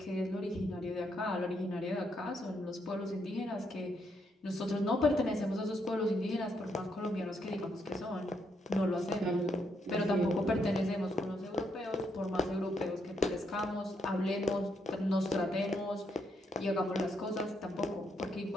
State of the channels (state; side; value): normal; both; correlation 0.77